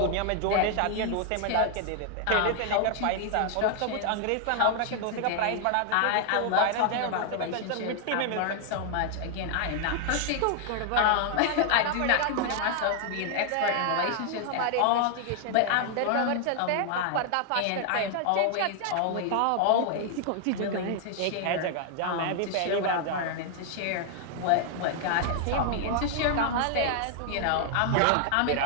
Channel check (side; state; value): both; different; correlation 0.00